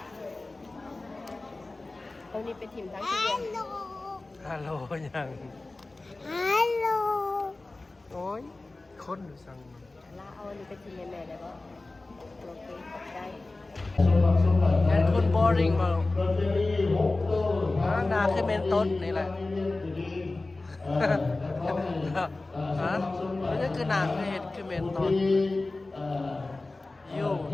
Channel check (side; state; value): right; quieter; 3.2 dB